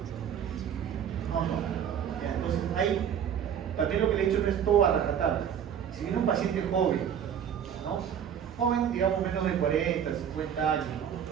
No. Ya, entonces, ahí también lo que le he dicho no es todo a rajatabla. Si viene un paciente joven, ¿no? Joven, digamos menos de 40, 50 años, ¿no?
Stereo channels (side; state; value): left; quieter; 8.7 dB